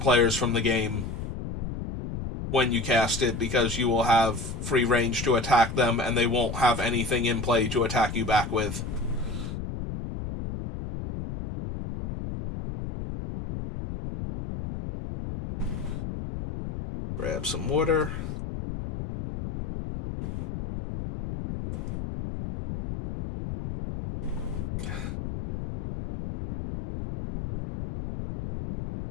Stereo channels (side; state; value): left; noise; rumble, 6 dB below the sound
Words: from the game when you cast it, because you will have free range to attack them, and they won't have anything in play to attack you back with. Grab some water.